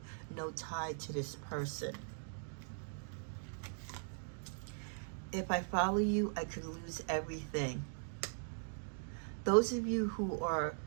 no tie to this person. If I follow you, I could lose everything. Those of you who are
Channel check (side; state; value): left; silent; digital silence